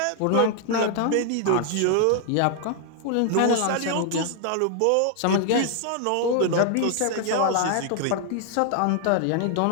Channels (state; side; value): different; both; correlation 0.00